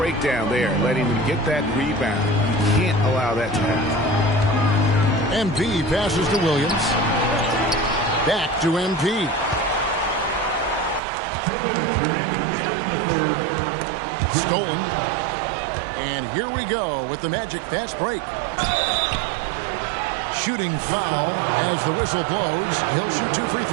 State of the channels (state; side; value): drops out; left; at 11.0 s